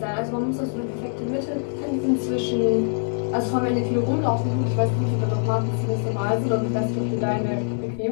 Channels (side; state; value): right; silent; 59 dB below the other